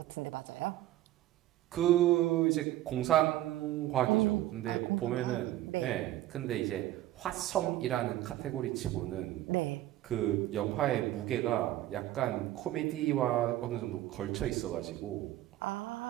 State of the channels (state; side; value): quieter; left; 14.6 dB